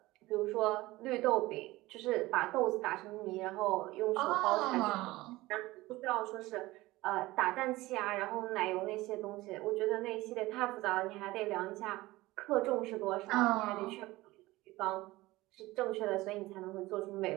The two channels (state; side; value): quieter; left; 19.1 dB